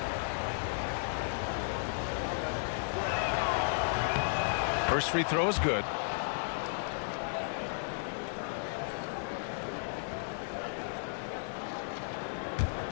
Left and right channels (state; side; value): silent; right; digital silence